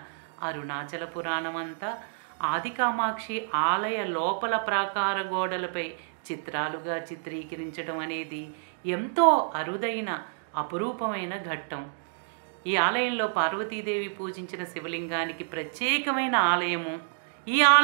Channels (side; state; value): left; silent; digital silence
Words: అరుణాచల పురాణమంతా ఆదికామాక్షి ఆలయ లోపల ప్రాకార గోడలపై చిత్రాలుగా చిత్రీకరించడం అనేది ఎంతో అరుదైన అపురూపమైన ఘట్టం. ఈ ఆలయంలో పార్వతీదేవి పూజించిన శివలింగానికి ప్రత్యేకమైన ఆలయము, ఈ